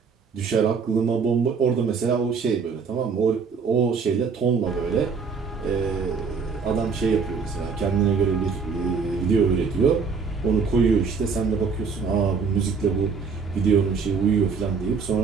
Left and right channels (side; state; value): left; quieter; 5.4 dB